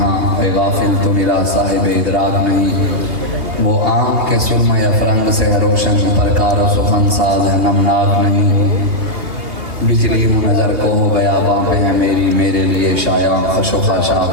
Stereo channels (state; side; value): late; left; 2.8 ms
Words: اے غافل تو میرا صاحب ادراک نہیں، وہ آنکھ کے سرمہ یا فرنگ سے روشن پرکار و سخن ساز ہے نمناک نہیں، بجلی ہوں نظر کو ہو گیا باں ہے میری، میرے لیے شایع خش و خاشاک